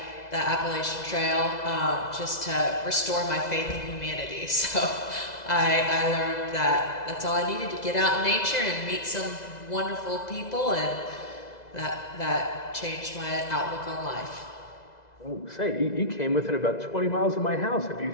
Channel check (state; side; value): late; right; 2.0 ms